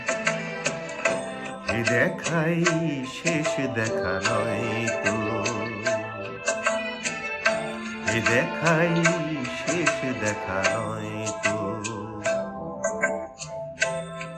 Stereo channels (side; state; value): both; identical; correlation 1.00